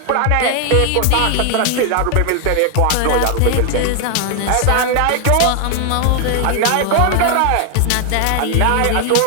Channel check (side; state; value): both; different; correlation 0.00